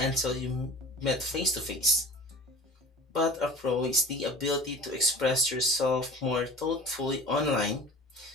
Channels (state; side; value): normal; both; correlation 0.40